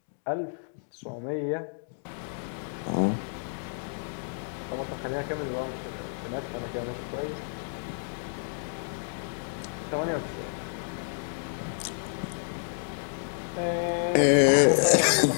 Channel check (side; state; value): right; silent; digital silence